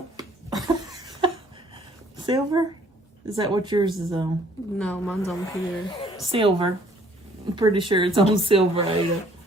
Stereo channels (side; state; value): both; normal; correlation 0.60